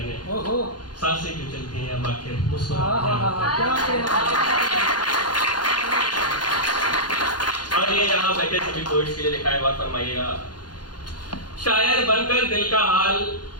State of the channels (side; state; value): right; late; 0.70 ms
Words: सांसें क्यों चलती हैं अब आखिर, और ये यहाँ बैठे सभी पोइट्स के लिए लिखा है, बात फरमाइएगा। शायर बनकर दिल का हाल